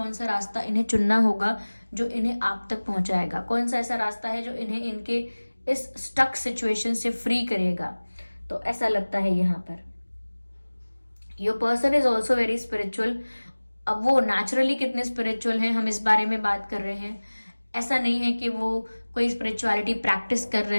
सा रास्ता इन्हें चुनना होगा जो इन्हें आप तक पहुंचाएगा, कौन सा ऐसा रास्ता है जो इन्हें इनके इस स्टक सिचुएशन से फ्री करेगा। तो ऐसा लगता है यहाँ per your person is also very spiritual. अब वो नेचुरली कितने स्पिरिचुअल हैं, हम इस बारे में बात कर रहे हैं। ऐसा नहीं है कि वो कोई स्पिरिचुअलिटी प्रैक्टिस कर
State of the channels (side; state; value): both; inverted; correlation -1.00